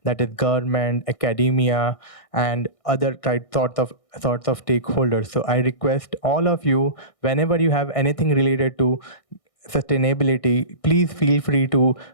that is government, academia, and other sorts of stakeholders. So I request all of you, whenever you have anything related to sustainability, please feel free to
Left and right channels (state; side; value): late; right; 1.6 ms